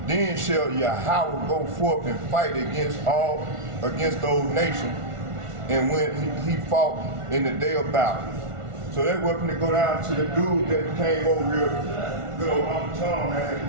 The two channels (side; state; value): left; late; 1.4 ms